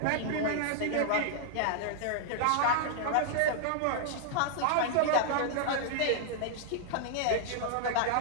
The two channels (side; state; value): both; different; correlation -0.01